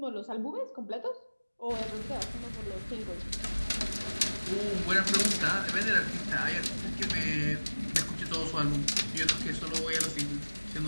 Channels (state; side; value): inverted; both; correlation -1.00